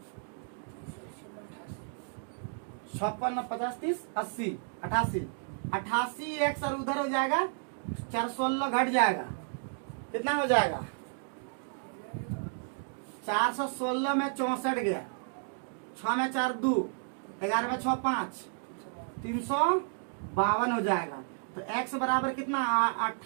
56 50 30 80 88 88x और उधर हो जाएगा 416 घट जाएगा, कितना हो जाएगा? 416 में 64 गया, 6 में 4 2, 11 में 6 5, 352 हो जाएगा। तो x बराबर कितना?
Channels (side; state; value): left; silent; 56 dB below the other